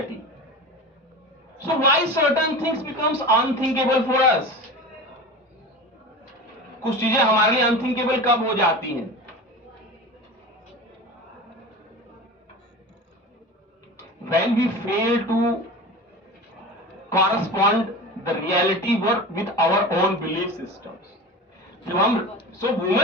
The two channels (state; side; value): normal; both; correlation 0.31